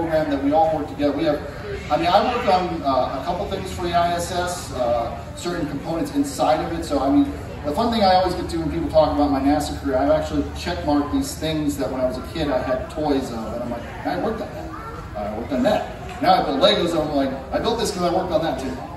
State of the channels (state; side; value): identical; both; correlation 1.00